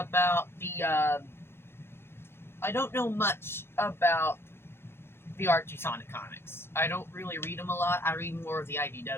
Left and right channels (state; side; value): late; right; 0.11 ms